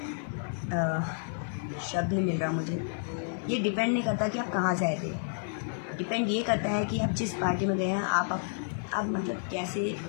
शब्द नहीं मिल रहा मुझे। ये डिपेंड नहीं करता कि आप कहाँ से आए थे, डिपेंड ये करता है कि आप जिस पार्टी में गए हैं, आप मतलब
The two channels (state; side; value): silent; right; digital silence